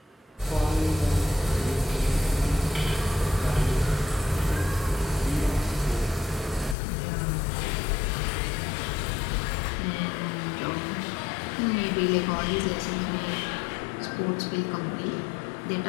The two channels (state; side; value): drops out; right; at 6.8 s